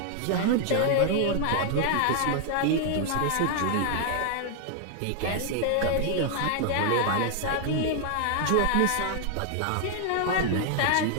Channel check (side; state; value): both; different; correlation 0.00